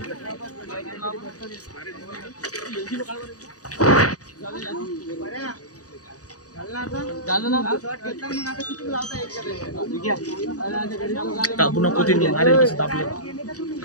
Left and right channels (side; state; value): right; late; 0.67 ms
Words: दाबू नको ते अरे कसं दाबलं